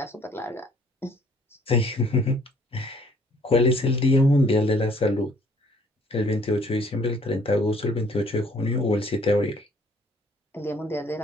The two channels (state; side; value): normal; both; correlation 0.60